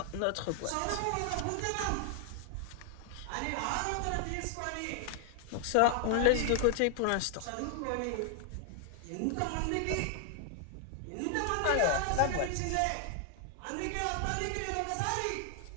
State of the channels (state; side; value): different; both; correlation 0.00